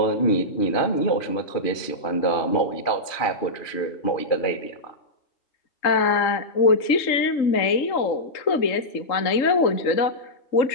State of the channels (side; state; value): right; late; 2.5 ms